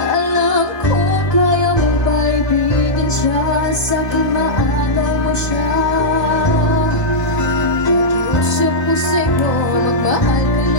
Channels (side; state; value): right; late; 1.2 ms